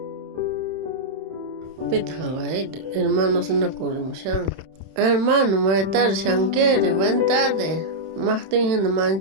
Hermanos, no corremos. Hermano, buenas tardes, Shankere, buenas tardes. Martín, no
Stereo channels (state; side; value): late; left; 31 ms